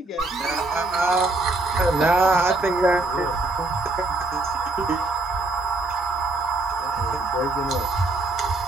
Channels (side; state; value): left; quieter; 3.0 dB